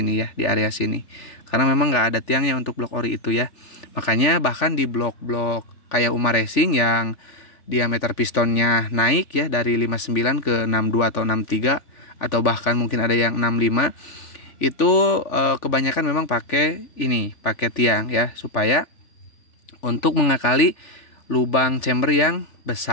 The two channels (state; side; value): late; right; 3.5 ms